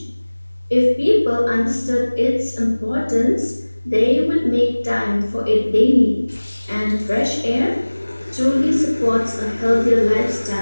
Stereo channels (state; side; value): inverted; both; correlation -1.00